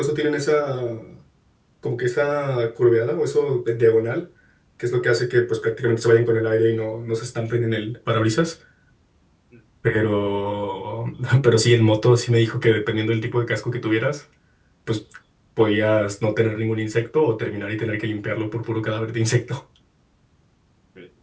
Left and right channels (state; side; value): identical; both; correlation 1.00